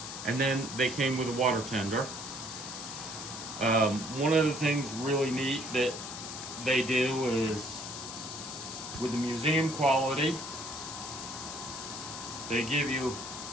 and then they came with a water tender. One of the things really neat that they do is, with the museum quality, they give you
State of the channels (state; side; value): noise; left; hiss, 8 dB below the sound